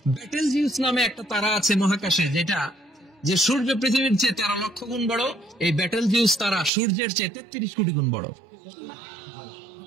ব্যাটেলজিউস নামে একটা তারা আছে মহাকাশে, যেটা যে সূর্য পৃথিবীর চেয়ে 13 লক্ষ গুণ বড়। এই ব্যাটেলজিউস তারা সূর্যের চেয়ে 33 কোটি গুণ বড়।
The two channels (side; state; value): left; drops out; at 6.7 s